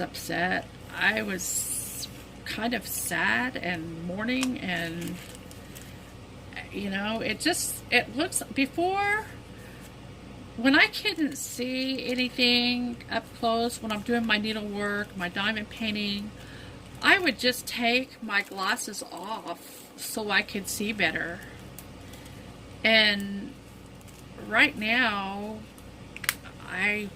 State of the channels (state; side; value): identical; both; correlation 1.00